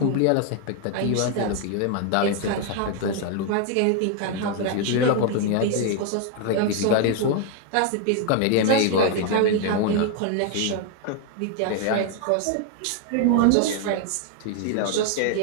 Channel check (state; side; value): different; both; correlation 0.00